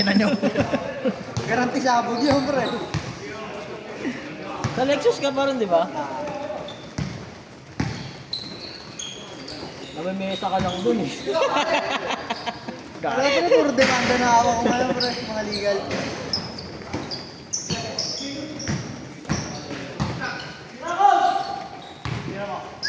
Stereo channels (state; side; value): identical; both; correlation 1.00